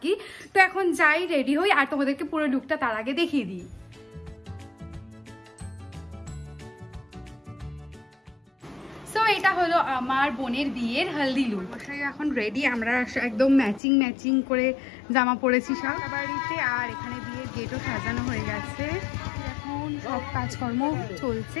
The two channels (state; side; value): drops out; right; at 13.8 s